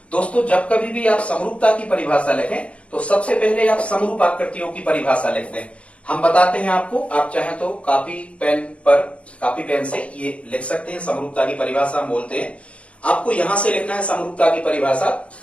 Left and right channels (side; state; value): right; late; 0.062 ms